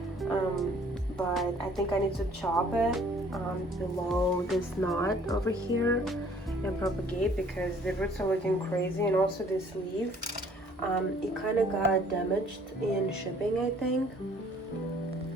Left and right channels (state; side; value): normal; both; correlation 0.57